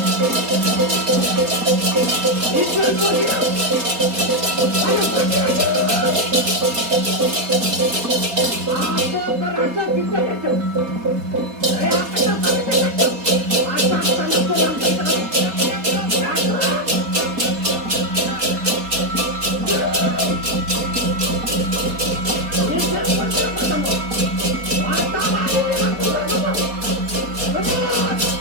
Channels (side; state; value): left; late; 4.2 ms